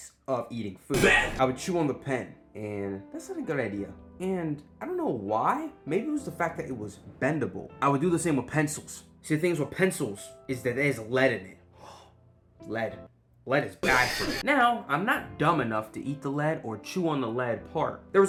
of eating food. I would chew on the pen, and that's not a good idea. And I don't know why. Maybe it was the fact that it was bendable. I would do the same with pencils. See, the things with pencils is that there's lead in it. Lead. Lead is bad for me. Now, I'm not dumb enough to eat the lead or chew on the lead part. There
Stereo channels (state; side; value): identical; both; correlation 1.00